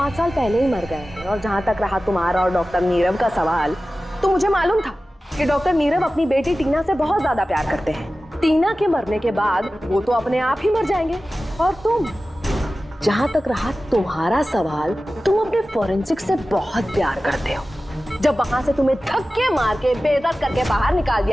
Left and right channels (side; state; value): both; normal; correlation 0.95